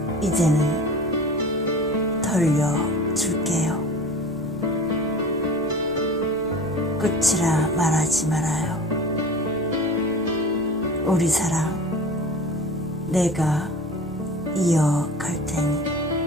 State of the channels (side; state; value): right; noise; rumble, 26 dB below the sound